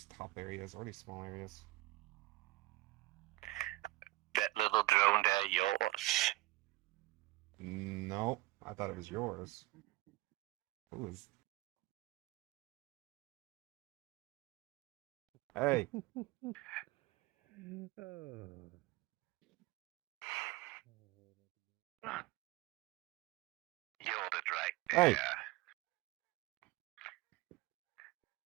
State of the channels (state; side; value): quieter; left; 19.4 dB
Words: top areas or these small areas. That little drone there yours? No, I thought it was yours. Who is? Hey, You're it right hey, there.